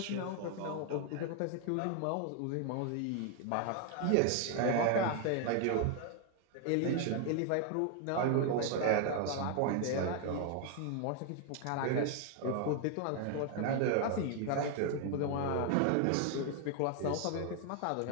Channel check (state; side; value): different; both; correlation 0.01